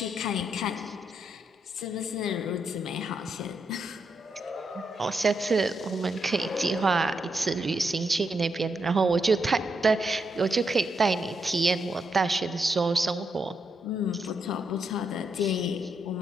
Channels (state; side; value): normal; both; correlation 0.81